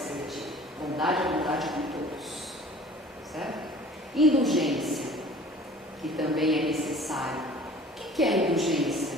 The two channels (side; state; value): both; normal; correlation 0.47